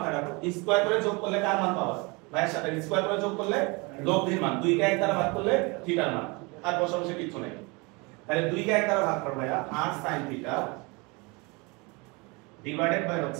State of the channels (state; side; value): quieter; left; 27.8 dB